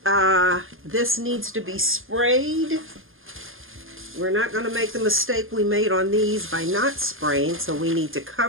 this needs to be sprayed. We're not going to make the mistake we made on these by not spraying, so we need to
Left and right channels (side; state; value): left; late; 0.60 ms